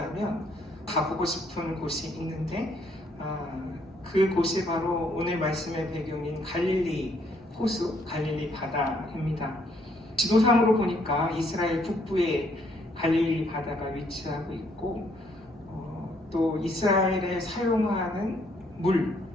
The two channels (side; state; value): both; normal; correlation 0.68